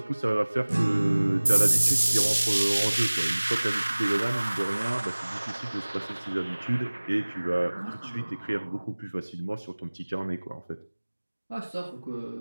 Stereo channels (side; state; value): both; inverted; correlation -1.00